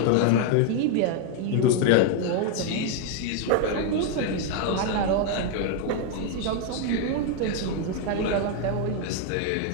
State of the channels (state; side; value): different; both; correlation 0.00